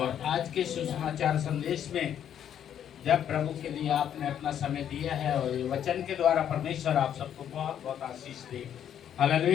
आज के सुसमाचार संदेश में जब प्रभु के लिए आपने अपना समय दिया है और ये वचन के द्वारा परमेश्वर आप सबको बहुत बहुत आशीष दे।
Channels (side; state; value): right; quieter; 9.6 dB